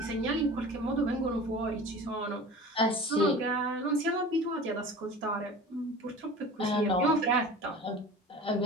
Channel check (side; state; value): both; normal; correlation 0.38